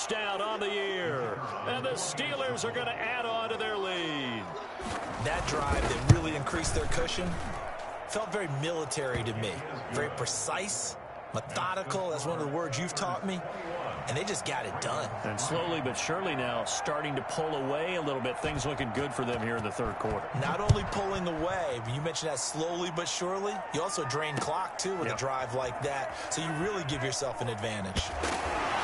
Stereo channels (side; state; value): both; identical; correlation 1.00